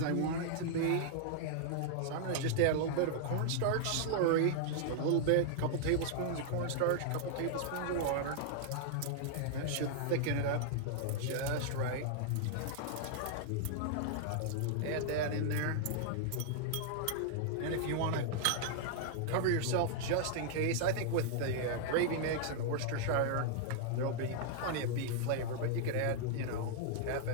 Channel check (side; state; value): both; different; correlation -0.01